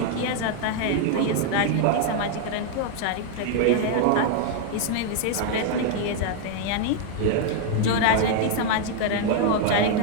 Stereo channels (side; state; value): both; different; correlation 0.00